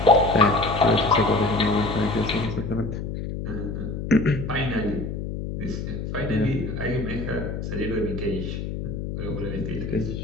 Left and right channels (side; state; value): left; noise; hum, 5 dB below the sound